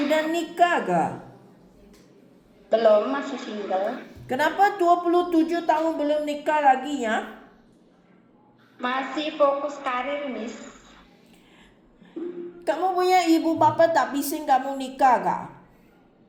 udah nikah gak? Belum, masih single. Kenapa 27 tahun belum nikah lagi ya? Masih fokus karir, Miss. Kamu punya ibu bapa tak bising kamu nikah gak?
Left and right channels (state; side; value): identical; both; correlation 1.00